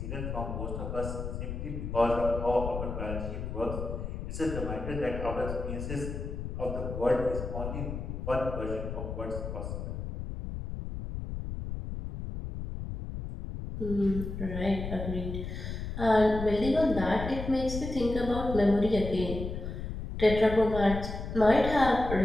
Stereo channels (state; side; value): noise; left; rumble, 6 dB below the sound